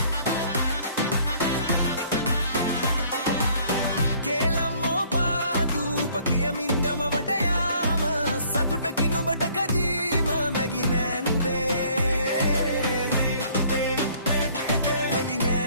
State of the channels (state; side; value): inverted; both; correlation -0.59